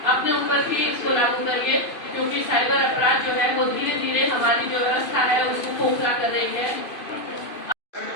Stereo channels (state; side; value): late; right; 2.5 ms